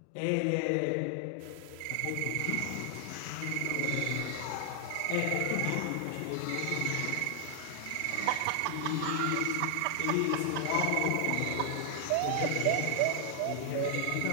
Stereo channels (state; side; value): different; both; correlation 0.00